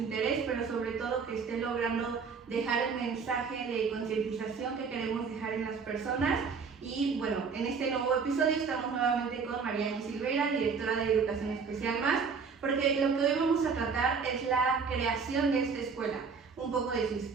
pero sobre todo que esté logrando dejar el mensaje de concientización que queremos dejar en las personas. Y bueno, en este nuevo episodio estamos nuevamente con Mariana Silveira, directora de Educación Especial Más, porque lo que hoy vamos a tratar es la creación de esta escuela, un poco de su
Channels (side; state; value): left; quieter; 5.5 dB